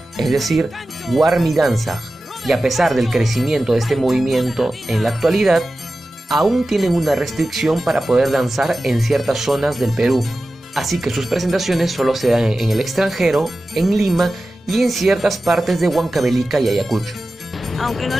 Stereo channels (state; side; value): normal; both; correlation 0.94